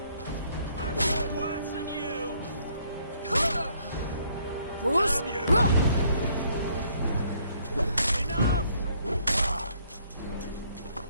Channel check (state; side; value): inverted; both; correlation -0.66